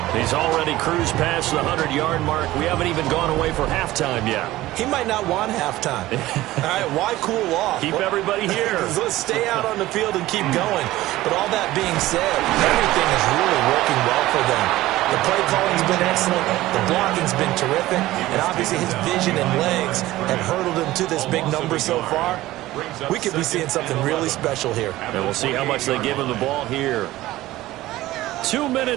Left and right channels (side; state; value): left; quieter; 16.7 dB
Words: He's already cruised past the 100-yard mark. We haven't even gone away for halftime yet. He might not want halftime. All right, why cool off? Keep everybody here. Let's stay out on the field and keep going. But all that being said, everything is really working well for them. The play calling's been excellent. The blocking's been terrific. And obviously his vision and legs have hurdled him to this big number so far. We could be seeing something really special here. And we'll see how much they give him the ball here. 2